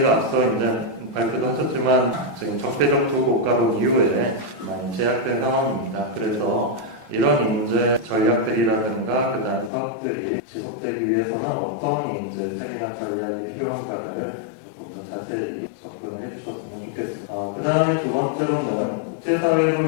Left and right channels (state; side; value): drops out; right; at 9.7 s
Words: 앞서 이제 발표도 하셨지만 지금 적대적 두 국가론 이후에 많이 제약된 상황입니다. 그래서 이런 이제 전략들이라든가 그다음 사업들이 지속되기 위해서는 어떤 이제 세밀한 전략이 필요한가를 조금 더 자세히 접근을 해주셨으면 좋겠습니다. 그 다음에 두 번째로는